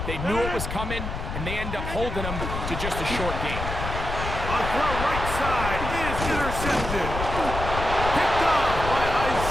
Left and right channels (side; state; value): left; noise; rumble, 5 dB below the sound